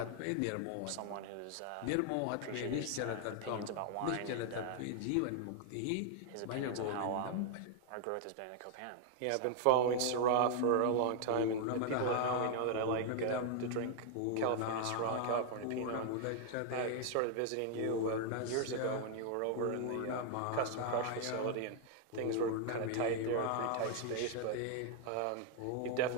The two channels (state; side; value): different; both; correlation 0.00